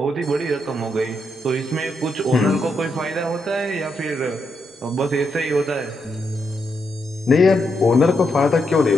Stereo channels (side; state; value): both; normal; correlation 0.81